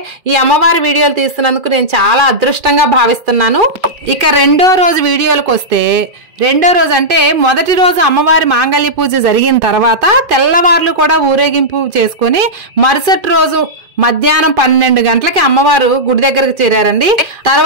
ఈ అమ్మవారి వీడియోలు తీస్తున్నందుకు నేను చాలా అదృష్టంగా భావిస్తున్నాను. ఇక రెండో రోజు వీడియోలకు వస్తే, రెండో రోజు అంటే మొదటి రోజు అమ్మవారి మాంగళ్య పూజ జరిగిన తర్వాత తెల్లవార్లు కూడా ఊరేగింపు చేసుకుని మరుసటి రోజు మధ్యాహ్నం 12 గంటలకి అమ్మవారు గుడి దగ్గరకు చేరారండి.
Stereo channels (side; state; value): left; late; 2.5 ms